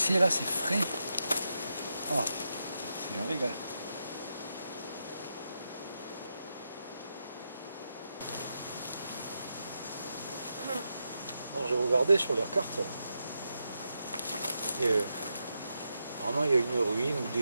là, c'est frais. Ah, c'est un régal. Alors j'ai regardé sur leur carte. Et vraiment il y a une ruine ou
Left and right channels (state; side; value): inverted; both; correlation -0.85